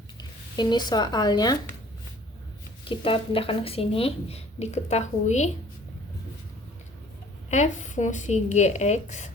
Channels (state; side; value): normal; both; correlation 0.52